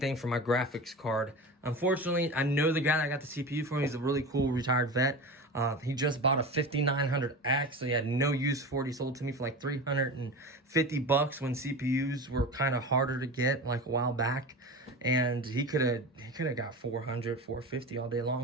for my graphics card. Unfortunately, I know the guy that got the CPU for me. He's a really cool retired vet. He just bought a 5900X, so he had no use for it. He sold it to me for like $350 when CPUs were kind of harder to get, like a while back. And he could have got $400, $450 all day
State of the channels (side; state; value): both; normal; correlation 0.29